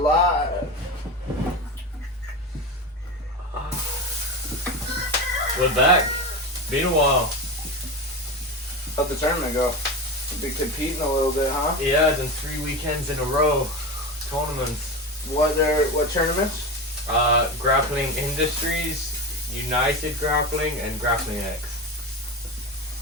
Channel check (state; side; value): normal; both; correlation 0.22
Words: We're back. Been a while. How'd the tournament go? Been competing a little bit, huh? Yeah, done 3 weekends in a row. Tournaments. What tournaments? Grappling Industries, United Grappling, and Grappling X.